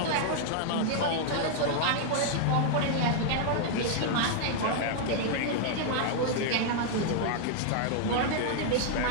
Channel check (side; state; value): both; different; correlation -0.01